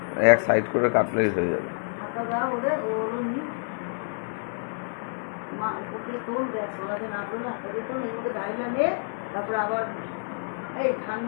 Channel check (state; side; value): silent; right; digital silence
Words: এক সাইড করে কাটলেই হয়ে যাবে।